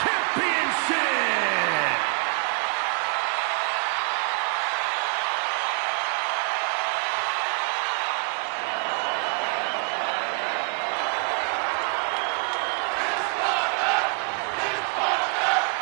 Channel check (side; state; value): left; quieter; 37.6 dB